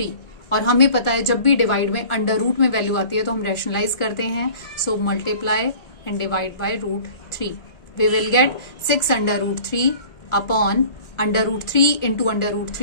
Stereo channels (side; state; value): right; late; 1.5 ms